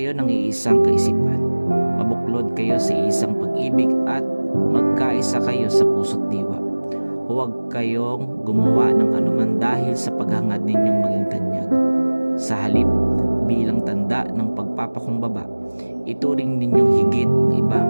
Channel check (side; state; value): both; inverted; correlation -1.00